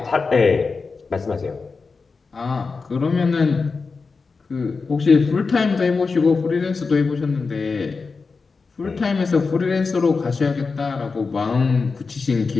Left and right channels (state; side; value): quieter; right; 4.5 dB